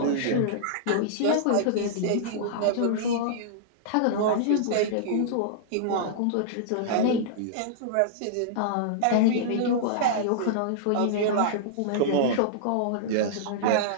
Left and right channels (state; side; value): different; both; correlation -0.02